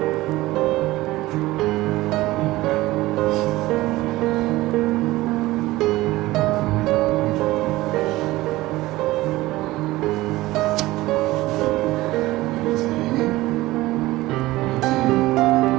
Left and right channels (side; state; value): left; quieter; 18.2 dB